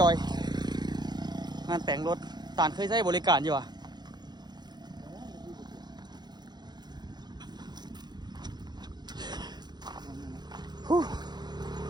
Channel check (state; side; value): late; left; 0.20 ms